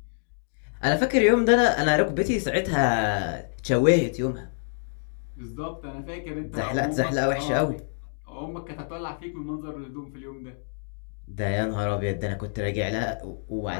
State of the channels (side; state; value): right; silent; digital silence